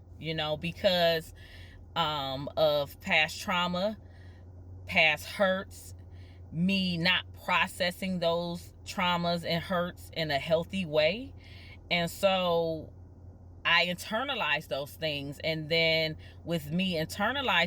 because of past trauma, past hurts, me not processing those traumas and hurts in a healthy way. And so I internalized those things, and then with me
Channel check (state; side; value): identical; both; correlation 1.00